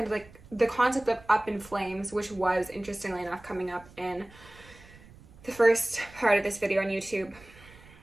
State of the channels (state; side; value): noise; right; rumble, 22 dB below the sound